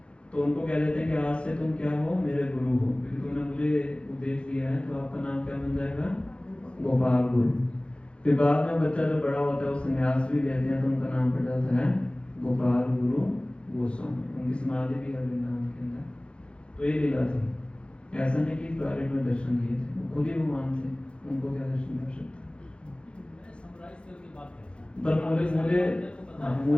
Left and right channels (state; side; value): late; right; 0.057 ms